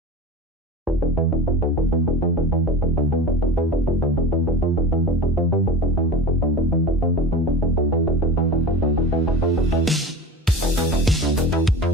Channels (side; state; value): both; normal; correlation 0.32